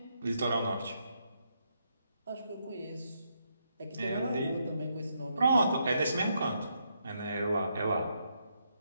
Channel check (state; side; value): inverted; both; correlation -0.78